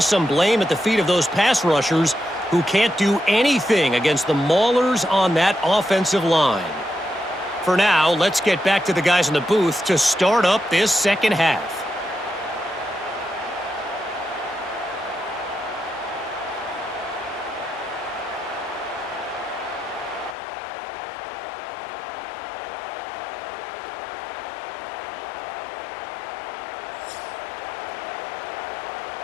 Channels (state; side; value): drops out; right; at 20.4 s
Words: blame at the feet of those pass rushers who can't do anything against the maulers on that offensive line. For now, let's get back to the guys in the booth to start up this second half.